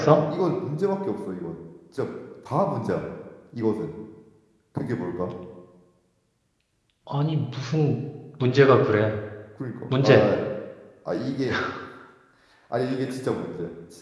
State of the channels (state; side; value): identical; both; correlation 1.00